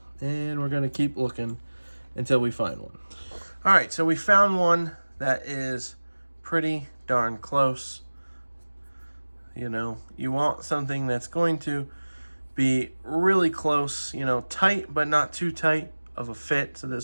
And we're gonna keep looking until we find one. All right, so we found one that is pretty darn close. You know, you want something that's going to be really close, you know, tight, but not too tight of a fit. So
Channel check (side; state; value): both; inverted; correlation -1.00